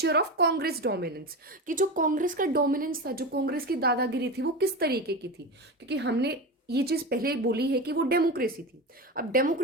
ऑफ कांग्रेस डोमिनेंस, कि जो कांग्रेस का डोमिनेंस था, जो कांग्रेस की दादागिरी थी, वो किस तरीके की थी। क्योंकि हमने ये चीज पहले बोली है कि वो डेमोक्रेसी थी। अब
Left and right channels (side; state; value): both; normal; correlation 0.23